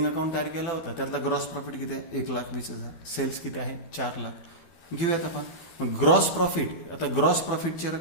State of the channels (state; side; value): late; right; 12 ms